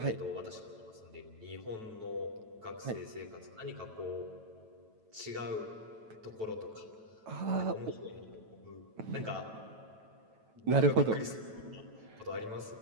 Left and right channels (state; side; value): late; left; 9.1 ms